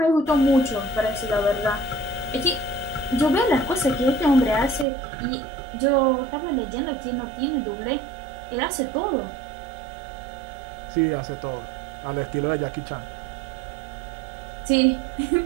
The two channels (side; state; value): left; drops out; at 4.9 s